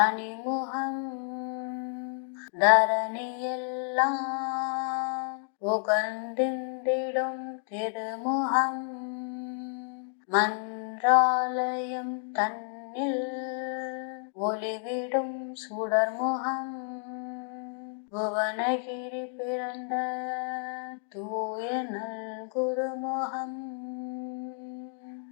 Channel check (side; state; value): right; silent; 57 dB below the other